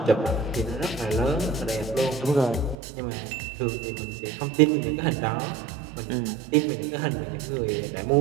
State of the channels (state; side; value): drops out; left; at 2.8 s